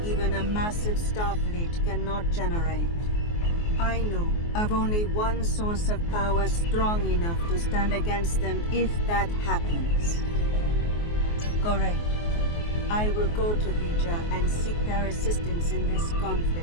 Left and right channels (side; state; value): right; late; 24 ms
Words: even a massive starfleet cannot generate. I know of only one source of power strong enough to stand against them if that happens. Correct. I will go to Vija and seek their assistance in this